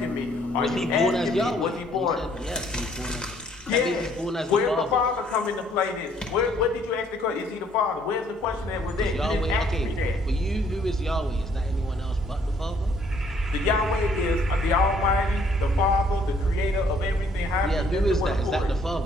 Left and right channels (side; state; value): both; normal; correlation 0.64